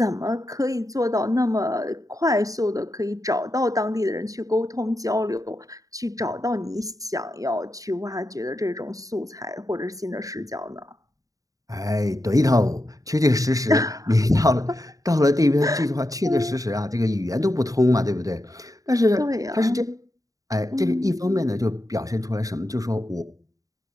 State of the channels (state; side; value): late; left; 0.17 ms